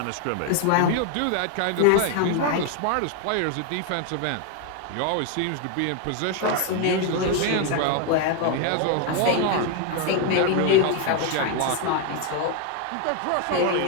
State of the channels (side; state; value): both; different; correlation 0.01